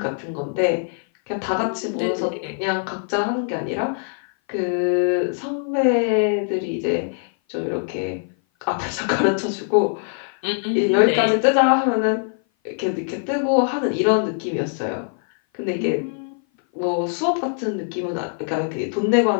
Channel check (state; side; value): silent; right; 57 dB below the other